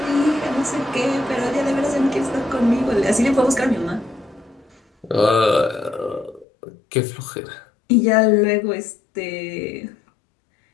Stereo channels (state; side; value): drops out; right; at 6.5 s